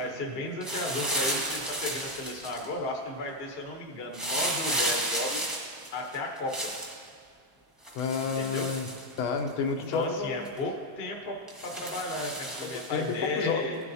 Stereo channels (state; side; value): normal; both; correlation 0.04